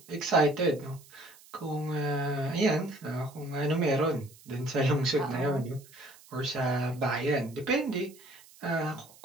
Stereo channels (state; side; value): noise; right; hiss, 24 dB below the sound